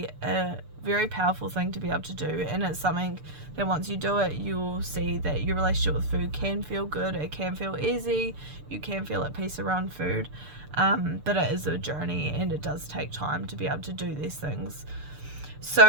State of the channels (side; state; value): left; late; 6.8 ms